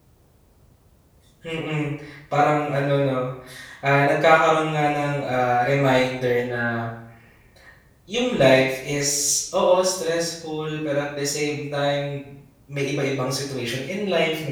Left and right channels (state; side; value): identical; both; correlation 1.00